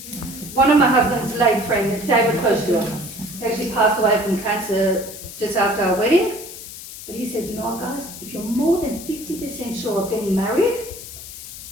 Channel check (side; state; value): left; noise; hiss, 13 dB below the sound